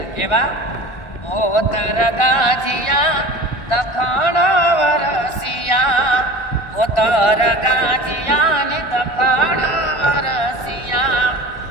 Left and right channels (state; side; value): late; right; 1.7 ms